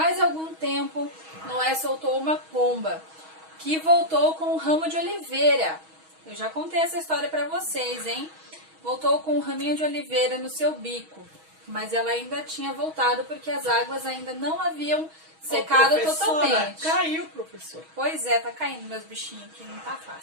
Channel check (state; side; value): late; left; 6.3 ms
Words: algum tempo, Noé soltou uma pomba, que voltou com um ramo de oliveira. Eu já contei essa história para vocês, hein? Voltou com um raminho de oliveira no seu bico, mas ela ainda tinha voltado porque as águas ainda não haviam secado totalmente. Caiu, professor. Pois é, tá caindo meus bichinhos aqui, não tá